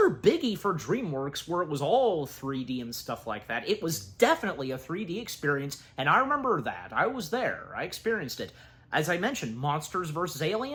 biggie for DreamWorks where it was all 3D and stuff like that, it was definitely a 3D experience, and I remember that. I was there. I experienced it. As I mentioned, Monsters vs.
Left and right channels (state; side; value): identical; both; correlation 1.00